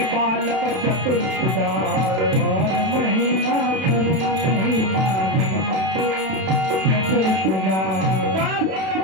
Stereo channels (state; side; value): late; left; 32 ms